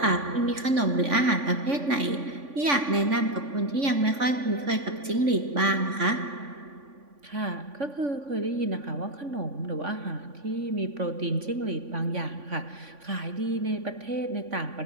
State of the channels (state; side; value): late; left; 3.5 ms